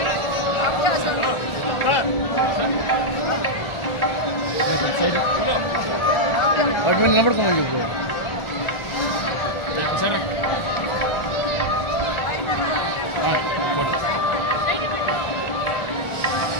వాటి మీద నిలబడుకోమని చెప్పు. సరే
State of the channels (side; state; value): right; late; 1.4 ms